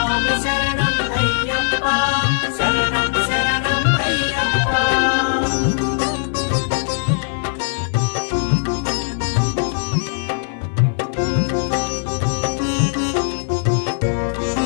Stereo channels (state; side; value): silent; right; 57 dB below the other